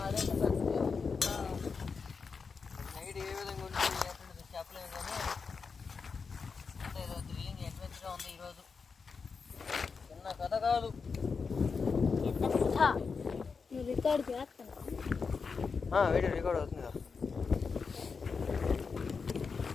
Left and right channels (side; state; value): right; quieter; 5.2 dB